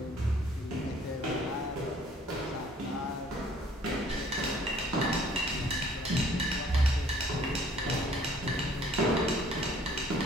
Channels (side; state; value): both; normal; correlation 0.57